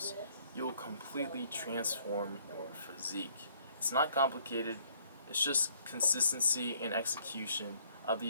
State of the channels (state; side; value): inverted; both; correlation -0.64